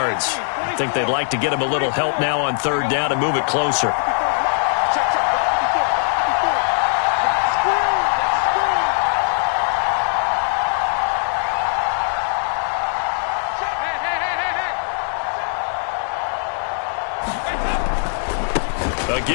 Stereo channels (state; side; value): silent; right; digital silence